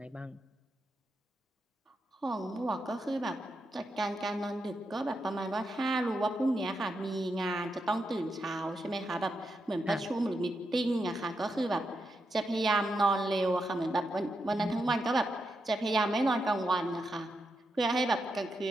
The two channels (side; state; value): both; normal; correlation 0.85